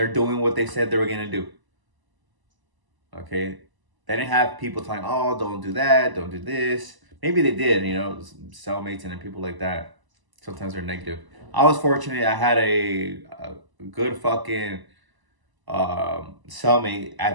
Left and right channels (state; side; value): late; left; 1.0 ms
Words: doing what they said they were going to do. Okay? They didn't have people telling, oh, don't do that, don't do this. Maybe they did, cellmates and people like that. Sometimes they're negative. I was fortunate. I had a good fucking cellmate